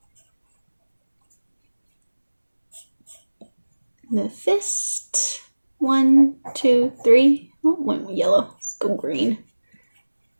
the fist, 1, 2, 3, oh, one yellow, let's go green,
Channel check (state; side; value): inverted; both; correlation -1.00